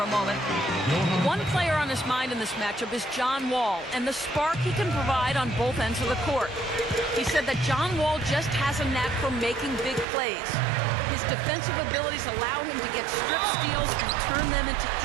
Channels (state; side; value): drops out; left; at 10.1 s